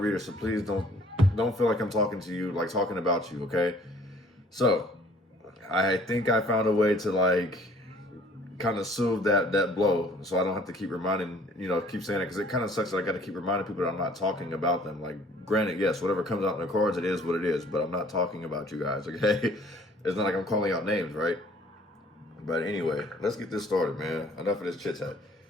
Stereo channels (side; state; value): both; normal; correlation 0.55